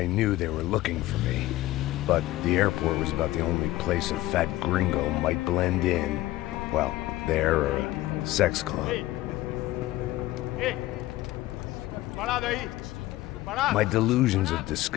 knew they were looking for me. But the airport was about the only place a fat gringo might blend in. Well, there or a sex club. Parado aí! My delusions of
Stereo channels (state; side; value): quieter; right; 16.7 dB